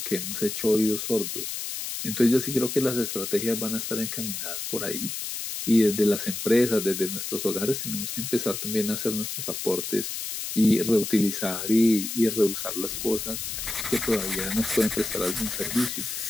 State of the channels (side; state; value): left; noise; hiss, 5 dB below the sound